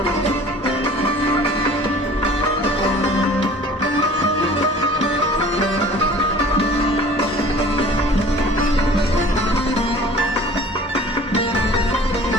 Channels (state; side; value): normal; both; correlation 0.46